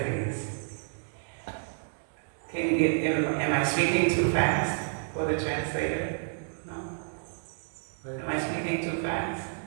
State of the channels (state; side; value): silent; left; digital silence